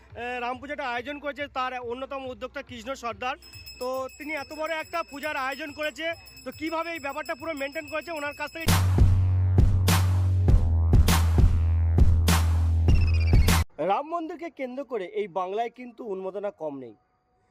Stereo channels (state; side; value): identical; both; correlation 1.00